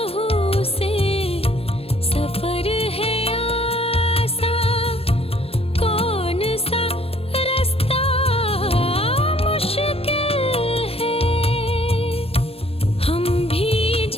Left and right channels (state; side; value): late; right; 0.28 ms